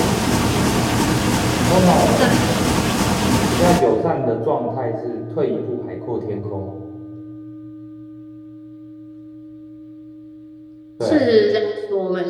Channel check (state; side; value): identical; both; correlation 1.00